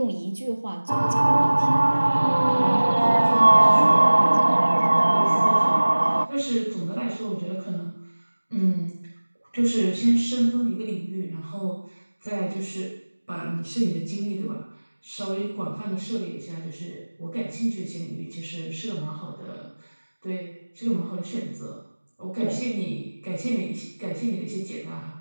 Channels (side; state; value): both; inverted; correlation -1.00